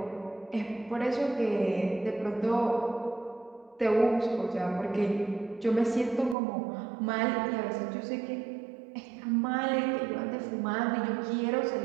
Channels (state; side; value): drops out; left; at 6.4 s